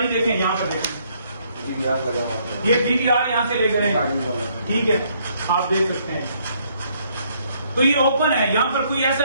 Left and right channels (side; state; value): both; inverted; correlation -0.68